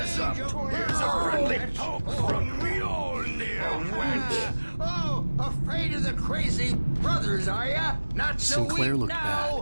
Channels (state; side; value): inverted; both; correlation -1.00